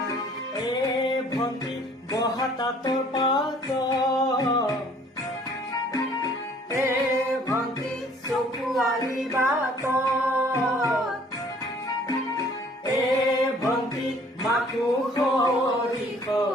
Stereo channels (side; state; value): both; normal; correlation 0.56